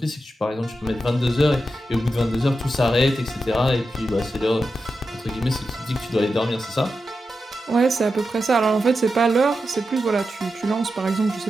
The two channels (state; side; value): normal; both; correlation 0.89